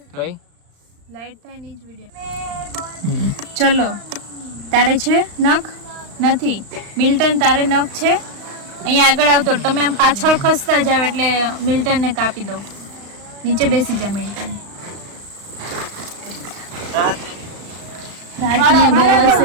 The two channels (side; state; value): left; late; 35 ms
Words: લાઈટ થાય ની જ વિડિયો. ચલો તારે છે નખ નથી? મિલ્ટન તારે નખ છે? અહીંયા આગળ આવતો તમે આમ પાછળ ખસતા જાવ એટલે મિલ્ટન ને કાપી દો. નીચે બેસી જા મિલ્ટન. રાજને બહુ